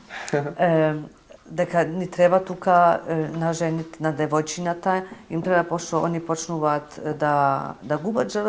Дека ни треба тука на жените, на девојчината, им треба пошто они почнуваат да губат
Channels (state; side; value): identical; both; correlation 1.00